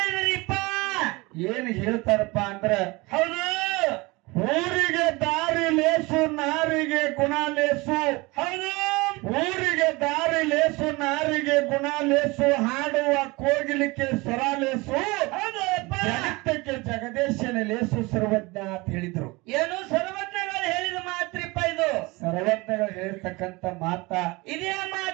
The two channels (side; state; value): left; quieter; 23.8 dB